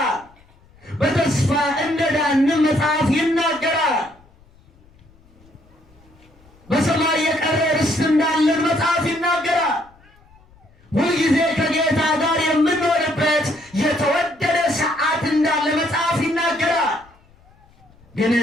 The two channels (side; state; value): left; noise; rumble, 29 dB below the sound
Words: በተስፋ እንደዳንም መጽሐፍ ይናገራል። በሰማይ የቀረ ርስት እንዳለን መጽሐፍ ይናገራል። ሁልጊዜ ከጌታ ጋር የምንኖርበት የተወደደ ሰዓት እንዳለ መጽሐፍ ይናገራል። ግን